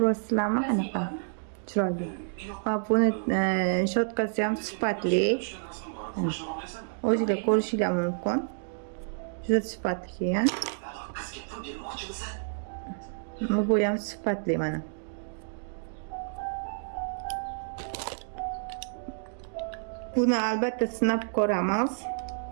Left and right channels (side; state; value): left; silent; digital silence